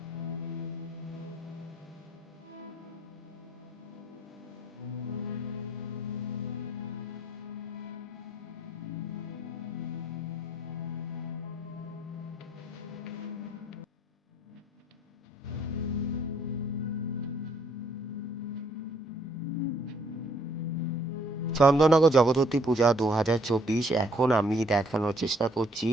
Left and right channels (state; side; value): normal; both; correlation 0.64